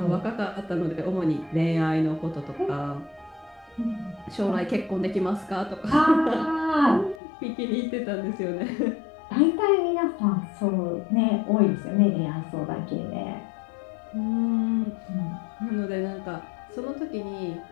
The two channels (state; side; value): drops out; right; at 7.2 s